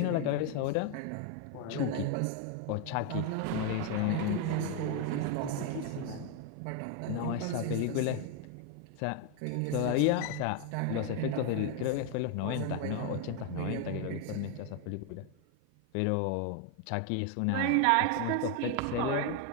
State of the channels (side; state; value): both; different; correlation 0.01